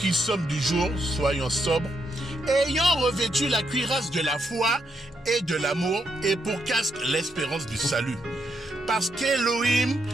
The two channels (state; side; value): normal; both; correlation 0.79